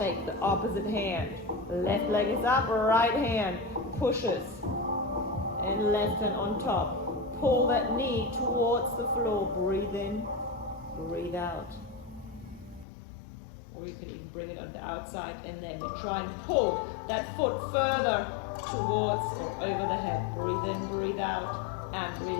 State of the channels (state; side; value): drops out; right; at 12.9 s